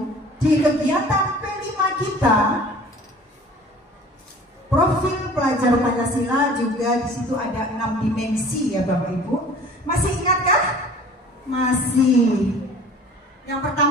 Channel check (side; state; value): both; normal; correlation 0.46